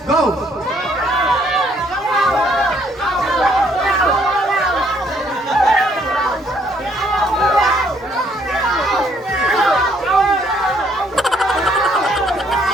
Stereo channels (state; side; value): normal; both; correlation 0.67